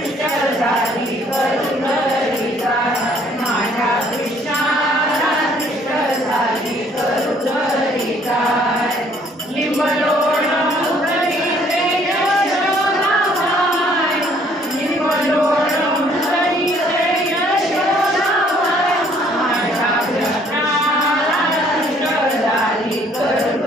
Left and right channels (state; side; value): normal; both; correlation 0.61